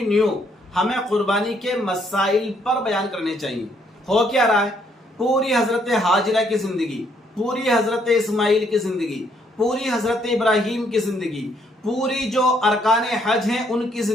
ہمیں قربانی کے مسائل پر بیان کرنے چاہیے۔ ہو کیا رہا ہے، پوری حضرت ہاجرہ کی زندگی، پوری حضرت اسماعیل کی زندگی، پوری حضرت ابراہیم کی زندگی، پوری جو ارکان حج ہیں ان کی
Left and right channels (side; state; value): both; normal; correlation 0.70